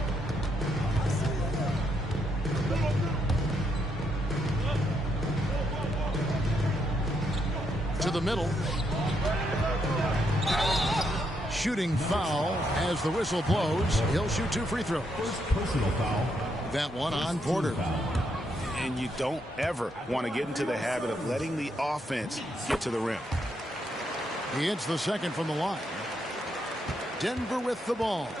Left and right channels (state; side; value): normal; both; correlation 0.78